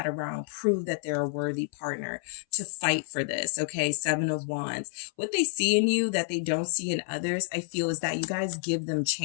around, prove that they're a worthy partner, to fight for this. Okay. Seven of Wands. What they see in you that they don't see in others, I feel, is that you guys give them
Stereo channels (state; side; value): silent; right; 59 dB below the other